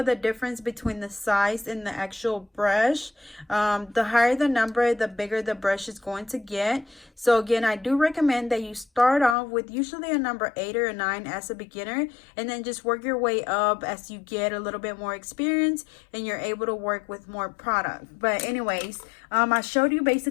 the difference between the size and the actual brush. The higher the number, the bigger the brush is going to get. So again, I do recommend that you start off with usually a number 8 or a 9 as a beginner, and then just work your way up as you get a little bit more experience and you're able to work with more product. But anyways, I showed you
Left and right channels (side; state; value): right; drops out; at 9.3 s